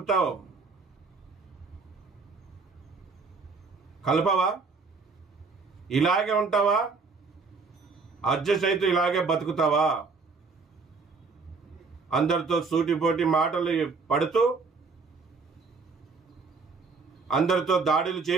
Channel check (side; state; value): left; quieter; 4.5 dB